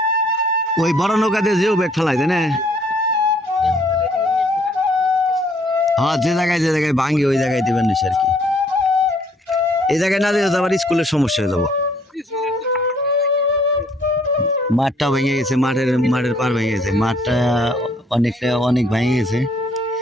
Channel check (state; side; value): normal; both; correlation 0.63